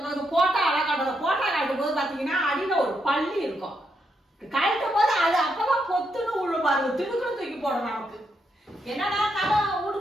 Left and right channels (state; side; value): normal; both; correlation 0.80